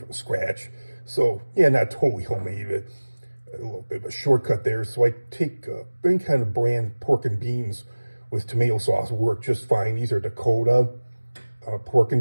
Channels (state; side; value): inverted; both; correlation -1.00